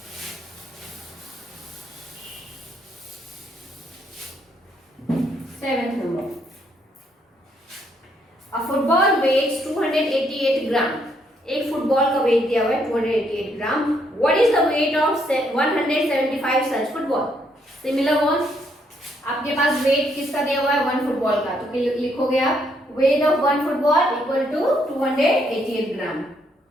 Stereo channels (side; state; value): both; normal; correlation 0.72